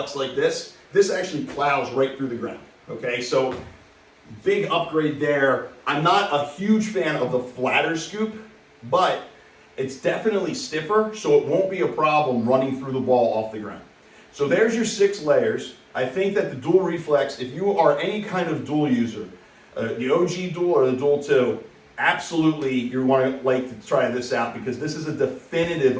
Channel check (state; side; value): identical; both; correlation 1.00